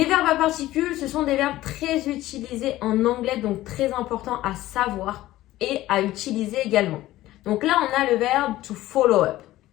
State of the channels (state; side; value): quieter; right; 15.8 dB